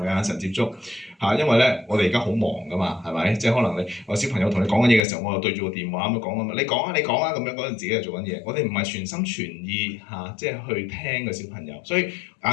眼神接觸嚇，因為咧我哋而家好忙噶嘛，係咪？即係可能我小朋友同你講緊嘢嘅時候，我又對住個電話咁樣講啊嘛，你講啊咁樣嗰陣自己又做緊嘢，我哋唔係全心全意嚇，即係去聽個小朋友，所以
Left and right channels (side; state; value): right; drops out; at 5.0 s